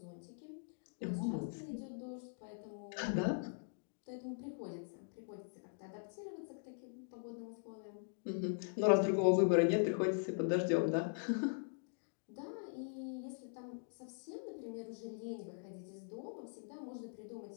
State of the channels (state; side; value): silent; right; digital silence